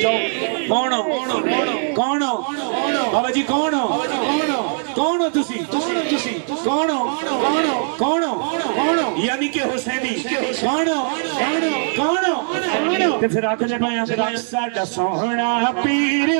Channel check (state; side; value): silent; left; 61 dB below the other